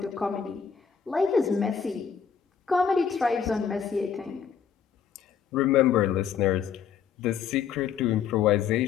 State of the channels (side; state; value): right; quieter; 7.3 dB